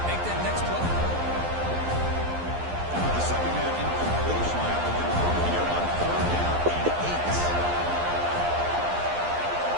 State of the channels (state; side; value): late; left; 11 ms